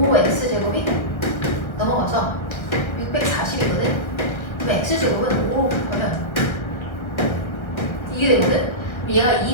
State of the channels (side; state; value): right; late; 1.3 ms